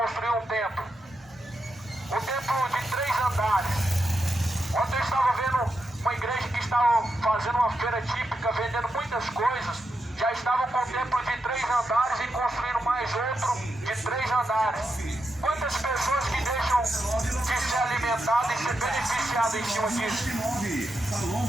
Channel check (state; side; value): normal; both; correlation 0.85